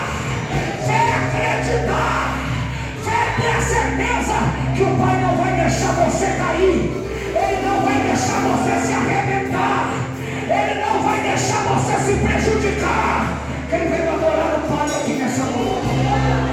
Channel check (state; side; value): identical; both; correlation 1.00